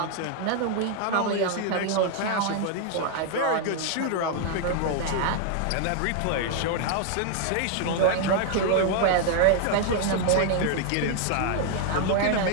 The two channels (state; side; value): different; both; correlation 0.00